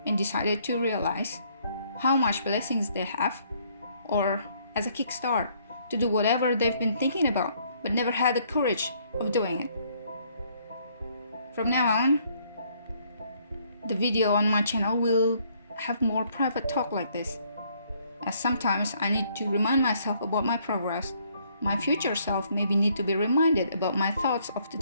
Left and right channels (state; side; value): inverted; both; correlation -0.66